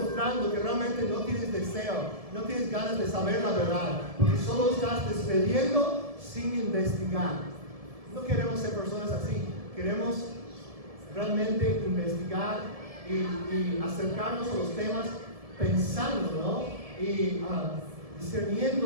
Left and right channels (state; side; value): late; left; 1.7 ms